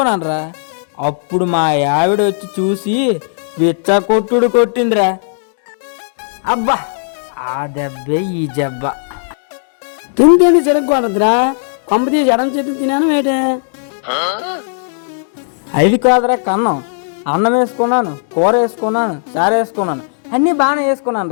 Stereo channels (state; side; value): silent; right; digital silence